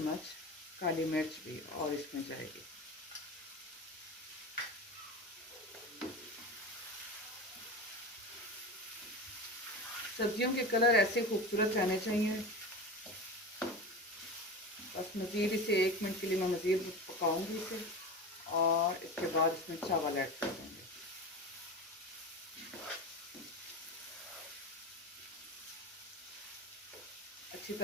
काली मिर्च भी और इसमें जाएगी। सब्जियों के कलर ऐसे खूबसूरत रहने चाहिए। बस मज़ीद इसे 1 मिनट के लिए मैं मज़ीद पकाऊंगी इसे, और इसके बाद इसमें चावल ऐड कर देंगे। अच्छी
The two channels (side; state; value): both; normal; correlation 0.27